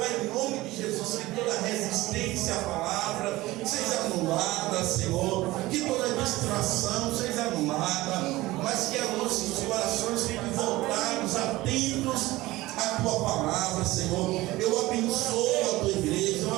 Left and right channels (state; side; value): quieter; left; 18.6 dB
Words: em nome de Jesus, que toda resistência à palavra seja anulada, Senhor, que toda distração seja anulada, mas que os nossos corações fiquem voltados, atentos à tua palavra, Senhor. Eu abençoo a tua igreja, eu